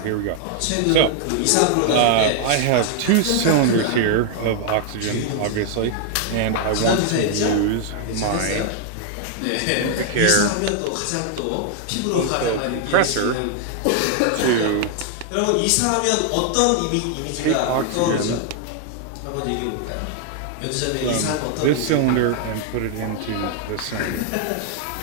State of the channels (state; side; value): different; both; correlation 0.00